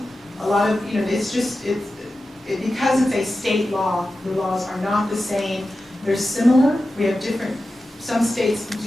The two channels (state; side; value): normal; both; correlation 0.93